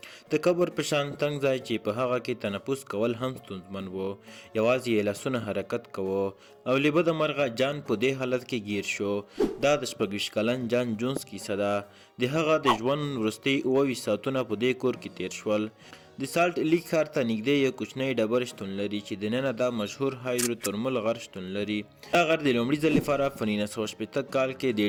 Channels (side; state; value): both; identical; correlation 1.00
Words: د قبر په شان تنګ ځای چې په هغه کې تنفس کول هم ستونزمن و. یوازې یې لاسونه حرکت کوه او له بده مرغه جان په دې حالت کې ګیر شو. دا د 26 کلن جان جونز کیسه ده. د هغه د ژوند وروستي 28 ساعتونه په دې کور کې تیر شول. د سالټ لیک ښار ته نږدې یو کوچنی ډبر شتون لري چې دننه دا مشهور هایدروترمل غر شتون لري. دا غر د لومړي ځل لپاره په 1960 کال کې